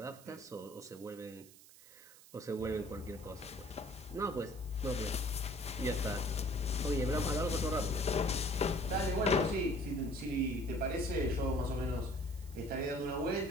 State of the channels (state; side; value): noise; right; hiss, 21 dB below the sound